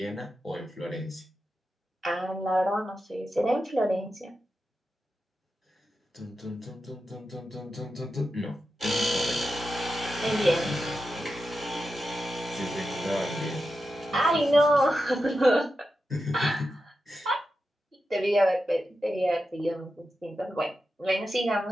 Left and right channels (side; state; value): both; normal; correlation 0.90